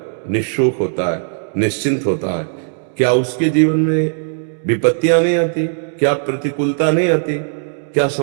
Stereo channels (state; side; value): silent; left; digital silence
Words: निःशोक होता है, निश्चिंत होता है। क्या उसके जीवन में विपत्तियां नहीं आती? क्या प्रतिकूलता नहीं आती? क्या